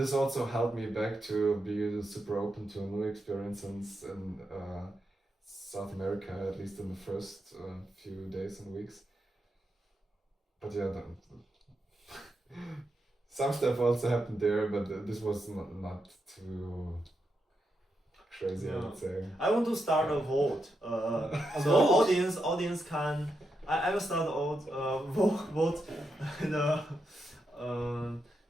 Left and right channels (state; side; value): normal; both; correlation 0.85